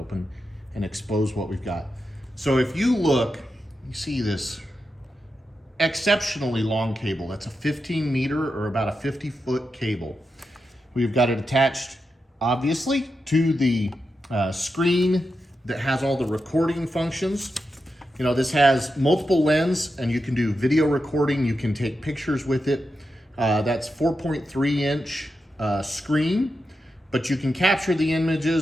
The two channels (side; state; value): both; normal; correlation 0.88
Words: and expose what we've got. So if you look, you see this exceptionally long cable. That's a 15 meter or about a 50-foot cable. We've got it attached, obviously, to the screen that has all the recording functions. You know, this has multiple lens and you can do video recording. You can take pictures with it. That's 4.3 inch screen, but you can capture the